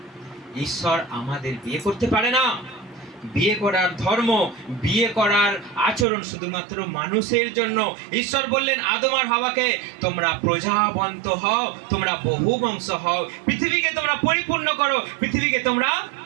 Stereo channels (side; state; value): left; drops out; at 6.1 s